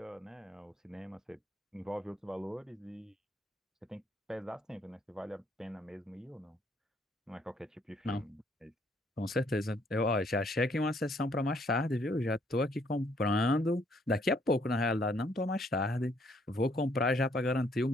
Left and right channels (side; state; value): both; normal; correlation 0.68